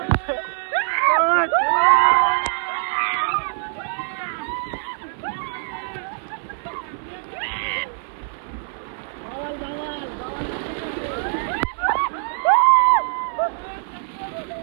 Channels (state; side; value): silent; left; 58 dB below the other